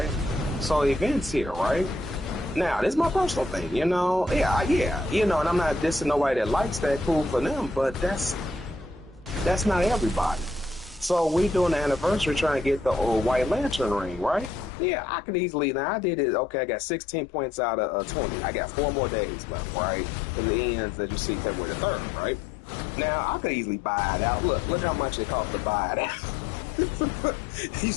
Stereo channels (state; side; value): drops out; right; at 14.7 s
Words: So events here, right? Now, this is my personal thing, yeah, and I'm not dissing nobody that likes that, cool for them, but that's not everybody. So we doing the anniversary trying to get the White Lantern ring, right? Yeah, I could easily, now I did it, okay, I got 16 points out of 20. I got 4 more days left, right? Because it ends, as you see, February the 3rd, right? Now, I could easily buy it out. Look how much it cost to buy it out. You